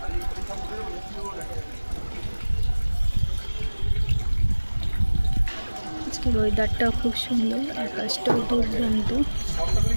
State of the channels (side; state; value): both; inverted; correlation -1.00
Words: আজকের ওয়েদারটাও খুব সুন্দর, আকাশটাও দুর্দান্ত।